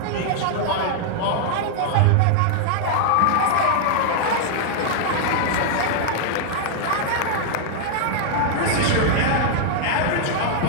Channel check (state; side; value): different; both; correlation -0.01